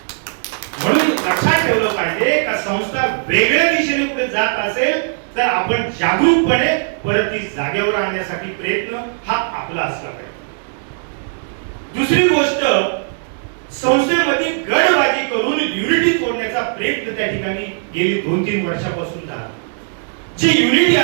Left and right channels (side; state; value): left; silent; digital silence